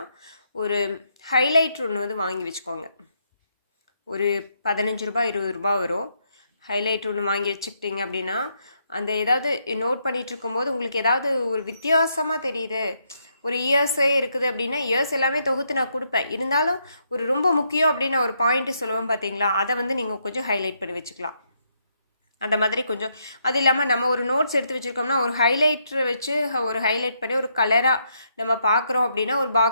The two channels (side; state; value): both; inverted; correlation -0.76